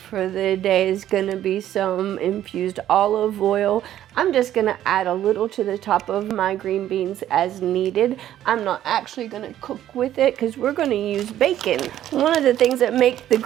the day is gonna be some infused olive oil. I'm just gonna add a little to the top of my green beans as needed. I'm not actually gonna cook with it because we're gonna use bacon. One of the things that make the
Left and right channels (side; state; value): left; quieter; 12.0 dB